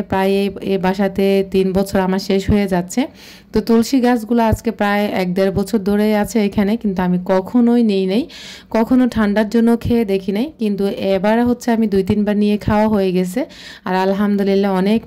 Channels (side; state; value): both; identical; correlation 1.00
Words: প্রায় এই বাসাতে 3 বছর আমার শেষ হয়ে যাচ্ছে। তো তুলসী গাছগুলো আজকে প্রায় 1-1.5 বছর ধরে আছে এখানে, কিন্তু আমি কখনোই নিই নাই, কখনো ঠান্ডার জন্য খেয়ে দেখি নাই, কিন্তু এবার হচ্ছে আমি 2-3 বার নিয়ে খাওয়া হয়ে গেছে। আর আলহামদুলিল্লাহ অনেক